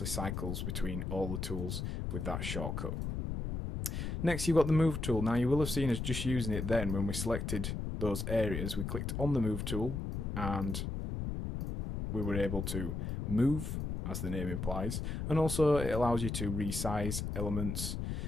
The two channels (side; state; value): left; noise; rumble, 3 dB below the sound